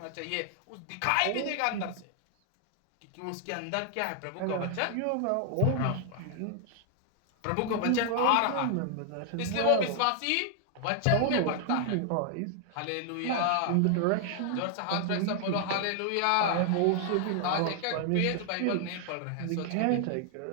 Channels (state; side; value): different; both; correlation 0.00